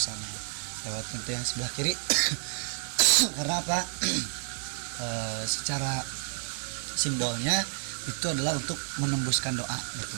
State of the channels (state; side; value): silent; left; digital silence